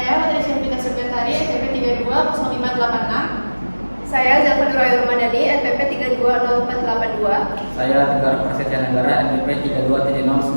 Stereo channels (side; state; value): both; inverted; correlation -1.00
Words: Materi Syafita Subyatari, NPP 320586. Saya Zafar Nurul Ramadhani, NPP 320482. Saya Tegar Prasetya Negara, NPP